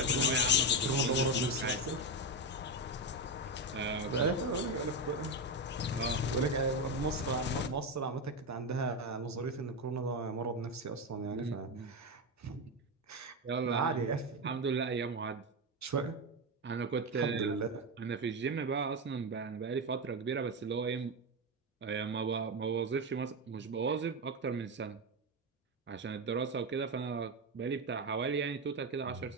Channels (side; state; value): both; normal; correlation 0.11